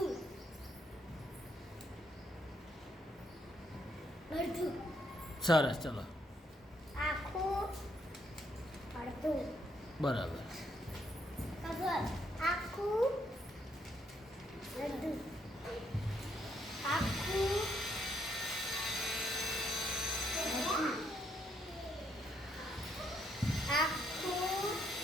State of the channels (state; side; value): normal; both; correlation 0.74